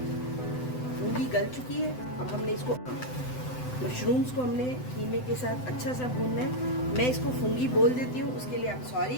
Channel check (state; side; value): late; right; 7.9 ms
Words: फूंगी गल चुकी है। अब हमने इसको मशरूम्स को हमने कीमे के साथ अच्छा सा भूनना है। मैं इसको फूंगी बोल देती हूँ, उसके लिए आप सॉरी,